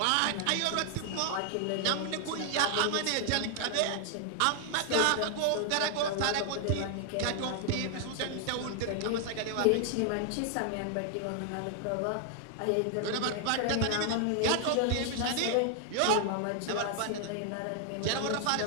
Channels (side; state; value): both; different; correlation 0.00